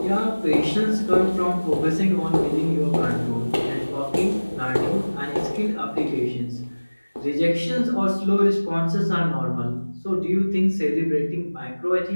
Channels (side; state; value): both; inverted; correlation -1.00